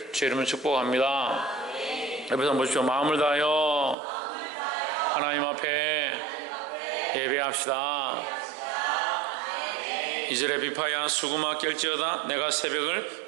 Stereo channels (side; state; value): left; drops out; at 4.0 s